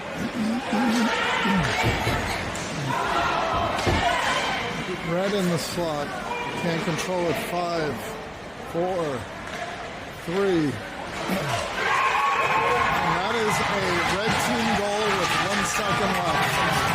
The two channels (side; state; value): both; identical; correlation 1.00